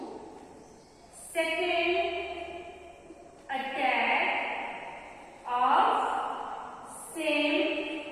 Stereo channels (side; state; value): both; identical; correlation 1.00